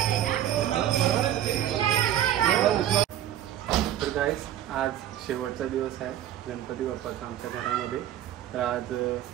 तर गाईस आज शेवटचा दिवस आहे गणपती बाप्पाचा आमच्या घरामध्ये. तर आज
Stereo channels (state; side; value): quieter; left; 11.5 dB